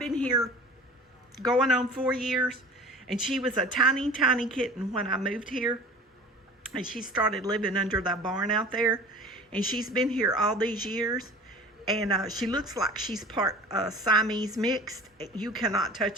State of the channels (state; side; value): normal; both; correlation 0.41